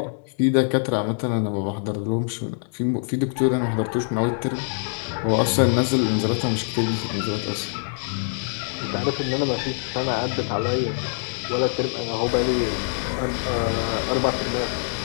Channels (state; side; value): silent; right; 61 dB below the other